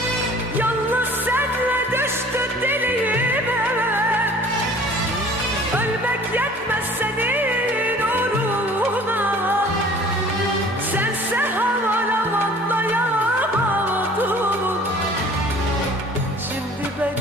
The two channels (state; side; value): normal; both; correlation 0.49